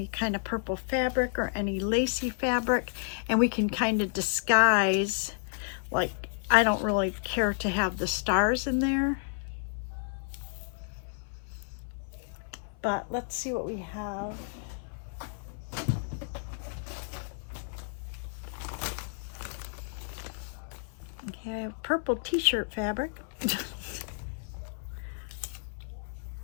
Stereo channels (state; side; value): silent; right; 57 dB below the other